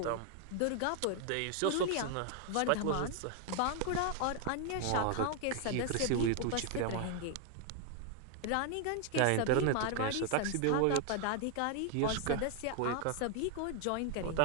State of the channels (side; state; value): both; different; correlation 0.00